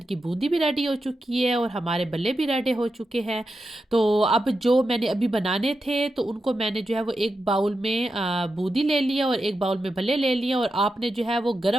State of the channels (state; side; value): normal; both; correlation 0.89